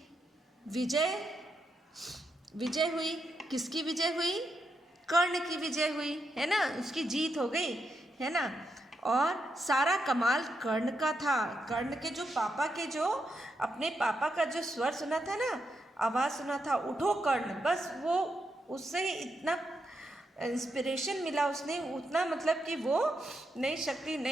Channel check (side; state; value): both; normal; correlation 0.83